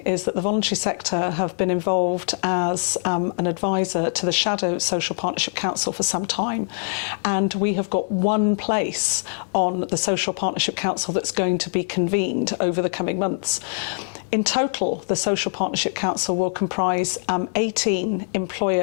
is that the voluntary sector have been involved as an advisor to the Shadow Social Partnership Council for some time. And we have got one place on the Social Partnership Council that's going to be convened over the coming months. In total, the Social Partnership Council will comprise 18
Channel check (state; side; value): silent; right; digital silence